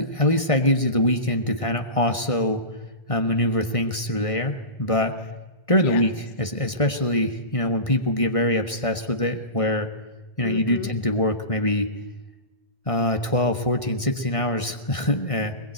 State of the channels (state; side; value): late; right; 1.6 ms